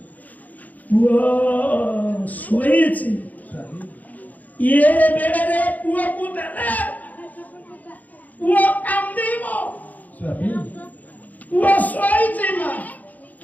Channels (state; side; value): late; right; 0.079 ms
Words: ପୁଅ ଶୋଇଛି। ସ୍ୱାମୀ ଇଏ ବେଳରେ ପୁଅକୁ ଦେଲେ ପୁଅ କାନ୍ଦିବ। ସ୍ୱାମୀ ପୁଅ ଶୋଇଛି ମା